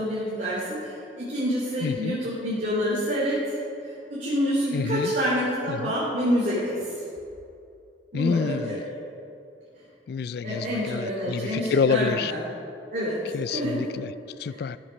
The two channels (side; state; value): both; normal; correlation 0.44